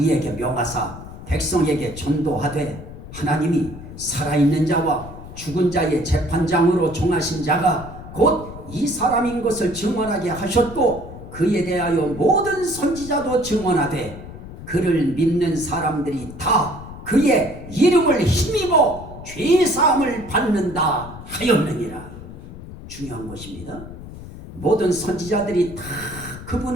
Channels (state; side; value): noise; left; rumble, 13 dB below the sound